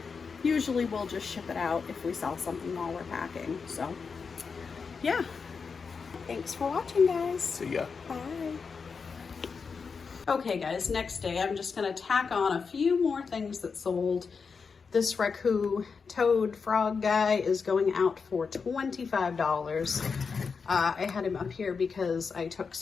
Usually we'll just ship it out if we sell something while we're packing. So yeah, thanks for watching, guys. See ya. Bye. Okay guys, next day I'm just gonna tack on a few more things that sold. This Raku toad frog guy is going out for $25. I had him up here because I took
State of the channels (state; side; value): quieter; right; 5.3 dB